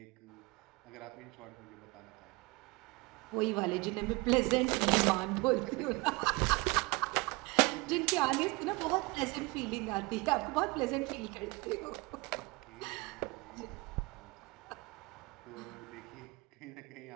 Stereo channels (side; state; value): left; quieter; 25.2 dB